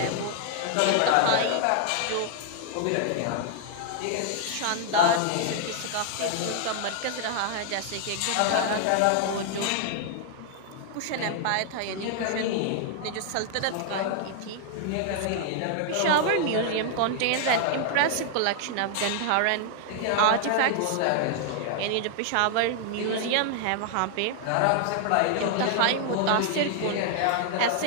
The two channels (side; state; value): both; different; correlation 0.00